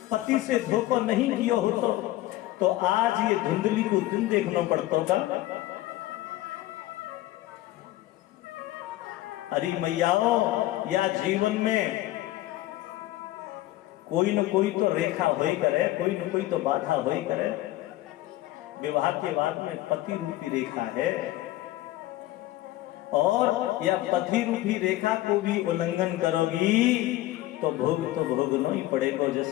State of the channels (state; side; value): quieter; right; 16.2 dB